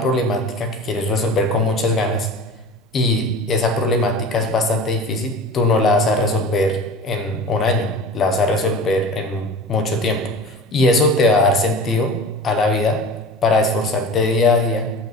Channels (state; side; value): normal; both; correlation 0.36